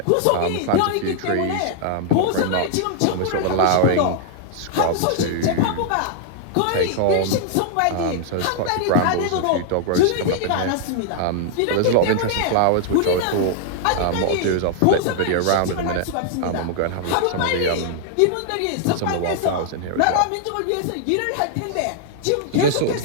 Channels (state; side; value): different; both; correlation -0.01